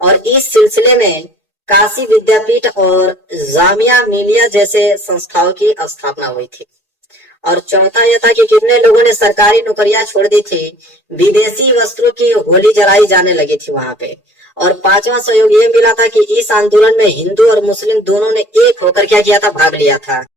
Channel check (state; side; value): normal; both; correlation 0.51